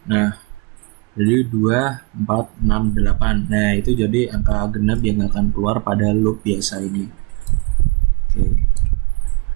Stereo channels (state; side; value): quieter; left; 29.4 dB